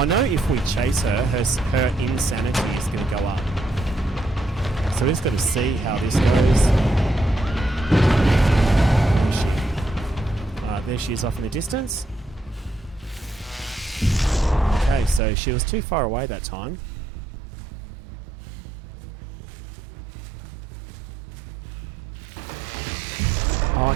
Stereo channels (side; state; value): left; drops out; at 15.2 s